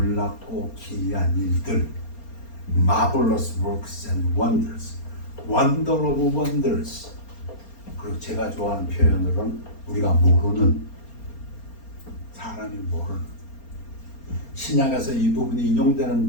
기이한 일들, Marvelous works and wonders, Wonder of wonders. 그리고 제가 좋아하는 표현으로는 우리가 모르는, 사람이 모르는, 신약에서 이 부분이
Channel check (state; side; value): late; right; 4.3 ms